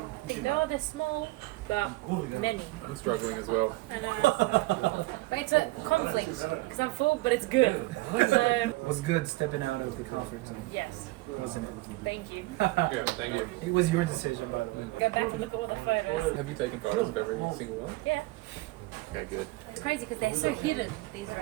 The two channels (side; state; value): left; quieter; 20.8 dB